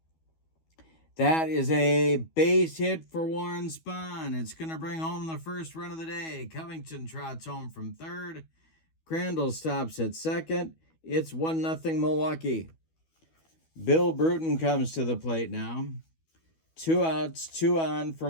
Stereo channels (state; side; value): late; right; 12 ms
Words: That is a base hit for Warren Spahn. It's going to bring home the first run of the day. Covington trots home from third. Crandall stops at second. It's 1-0 Milwaukee. Bill Bruton comes to the plate now. 2 outs, 2 on for